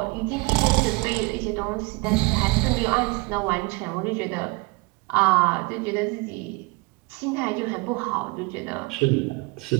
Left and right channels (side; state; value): left; quieter; 26.6 dB